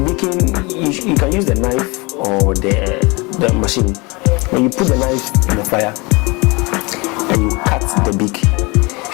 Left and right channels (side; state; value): right; quieter; 26.6 dB